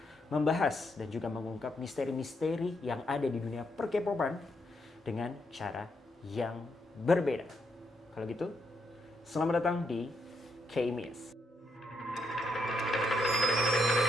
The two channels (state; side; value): normal; both; correlation 0.78